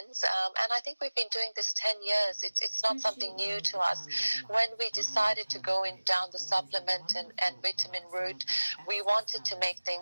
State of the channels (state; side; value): inverted; both; correlation -1.00